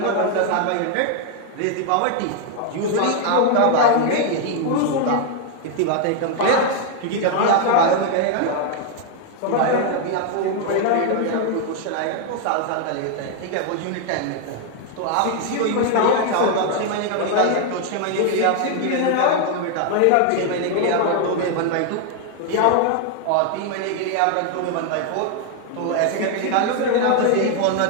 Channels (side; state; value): both; different; correlation 0.01